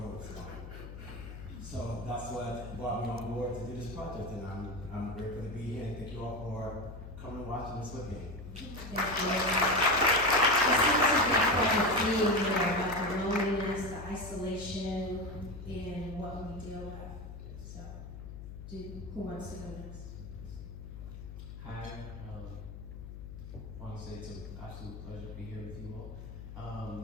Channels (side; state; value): left; noise; hum, 11 dB below the sound